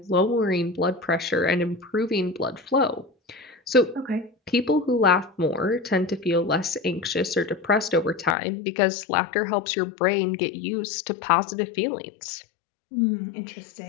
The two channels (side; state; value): right; drops out; at 8.3 s